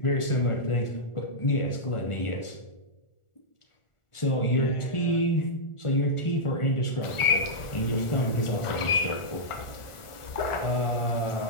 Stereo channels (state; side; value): late; right; 1.4 ms